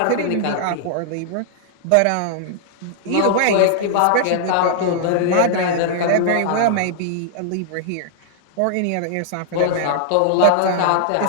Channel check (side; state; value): both; different; correlation -0.01